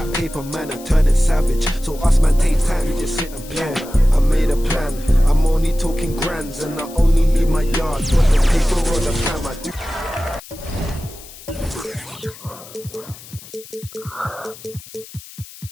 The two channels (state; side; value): noise; left; hiss, 18 dB below the sound